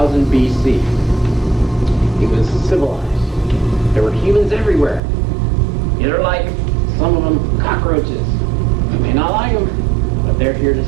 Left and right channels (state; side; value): drops out; left; at 5.0 s